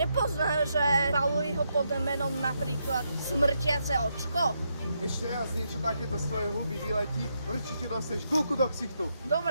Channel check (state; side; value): inverted; both; correlation -0.81